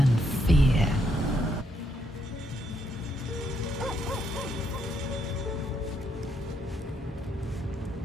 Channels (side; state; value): both; normal; correlation 0.75